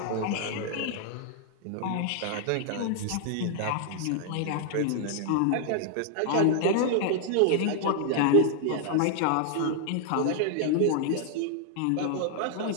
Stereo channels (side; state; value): both; different; correlation -0.01